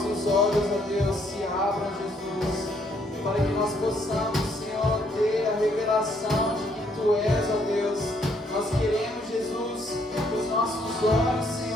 nossos olhos, ó Deus, se abram, Jesus, para que nós possamos, Senhor, ter a revelação de que Tu és, ó Deus. Nós queremos, Jesus, que os nossos olhos,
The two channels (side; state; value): both; normal; correlation 0.69